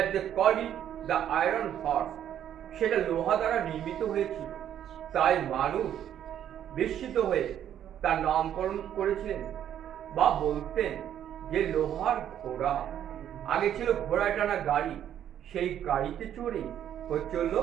they called it the iron horse. সেটা লোহা দ্বারা নির্মিত হয়েছিল, তাই মানুষ বিস্মিত হয়ে তার নামকরণ করেছিলেন বা বলতেন যে লোহার ঘোড়া। আগে ছিল ঘোড়ায় টানা গাড়ি, সেই গাড়িতে চড়ে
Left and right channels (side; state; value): left; quieter; 10.3 dB